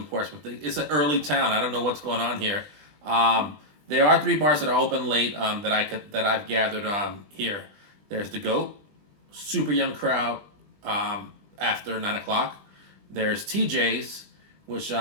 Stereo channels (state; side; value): late; left; 20 ms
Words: Portsmouth. It's an early town. I don't know what's going on here. There are 3 bars that are open late that I've gathered here. There's the Goat, super young crowd after 9 o'clock. There's TJ's, which